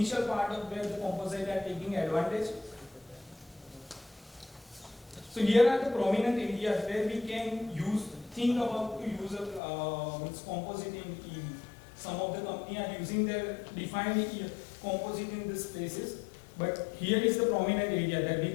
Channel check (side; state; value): right; drops out; at 9.6 s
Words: part of where the composite are taking advantage. So here are the prominent areas where we can think about to use a composite in EV. Some of the companies are using their defined composite in these places, but here is the prominent area that we